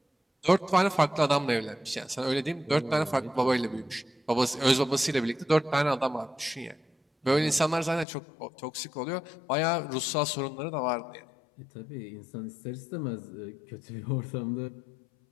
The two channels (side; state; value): right; drops out; at 8.1 s